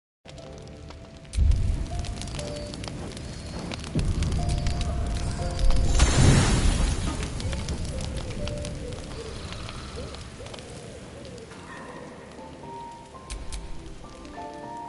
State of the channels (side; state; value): both; identical; correlation 1.00